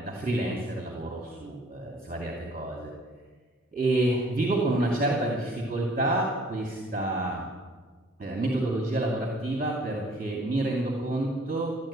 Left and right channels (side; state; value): both; normal; correlation 0.56